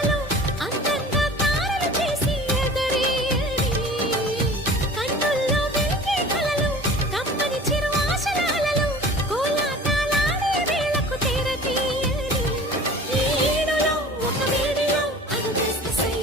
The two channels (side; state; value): both; normal; correlation 0.42